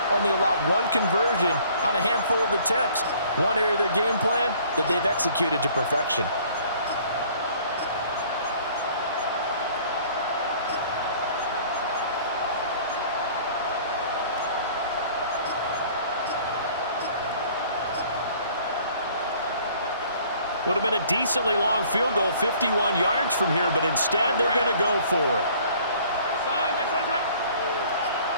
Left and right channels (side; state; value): both; inverted; correlation -0.55